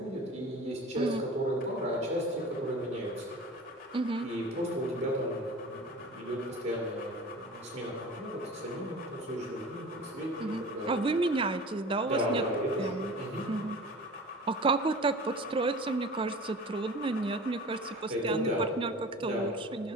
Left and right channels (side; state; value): both; normal; correlation 0.38